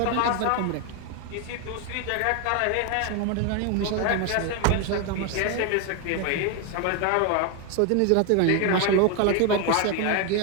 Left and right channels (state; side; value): different; both; correlation 0.01